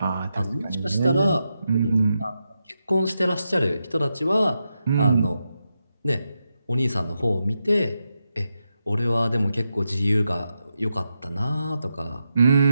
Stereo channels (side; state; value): both; inverted; correlation -0.87